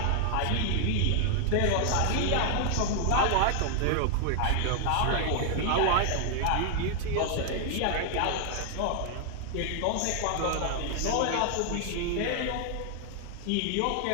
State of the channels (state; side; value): different; both; correlation 0.00